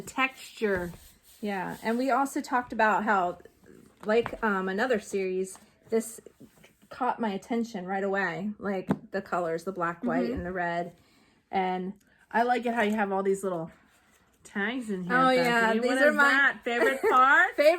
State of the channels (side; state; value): both; identical; correlation 1.00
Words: texture. Yeah, and we also talked about how, like another series, this caught my attention right away. Like the colors, the black, white, and the red. And I like it how you have all these little tags in here. Oh, yeah. These are my favorite part?